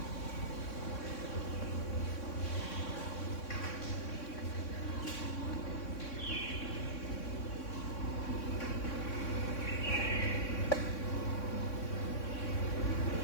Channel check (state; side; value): late; right; 3.6 ms